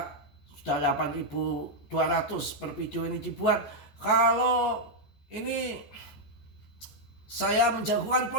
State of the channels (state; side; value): late; right; 14 ms